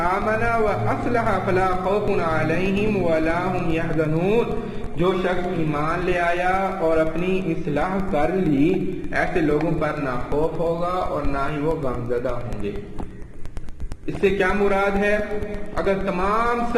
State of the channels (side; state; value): both; identical; correlation 1.00